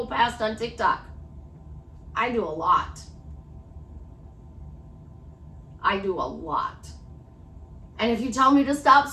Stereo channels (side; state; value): both; identical; correlation 1.00